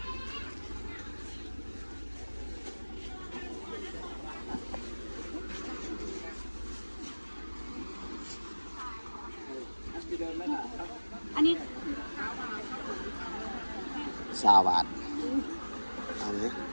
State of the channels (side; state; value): both; inverted; correlation -1.00